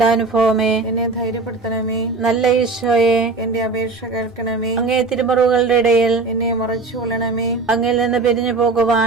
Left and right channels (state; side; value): quieter; left; 3.7 dB